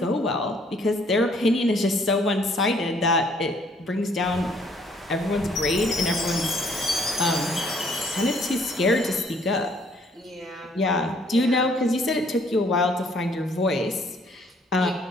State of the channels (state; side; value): normal; both; correlation 0.63